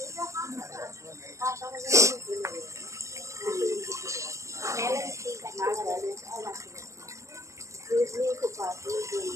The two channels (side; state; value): left; late; 0.15 ms